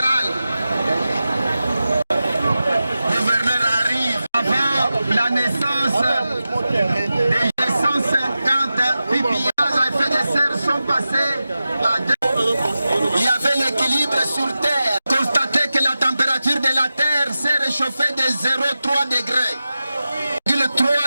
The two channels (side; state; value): both; inverted; correlation -0.93